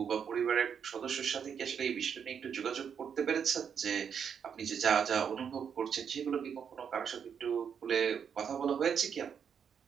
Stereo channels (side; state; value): left; quieter; 7.4 dB